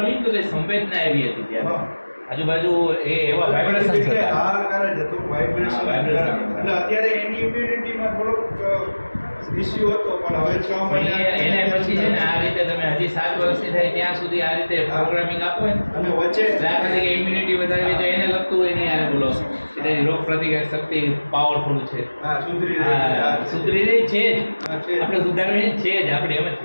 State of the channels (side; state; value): both; inverted; correlation -1.00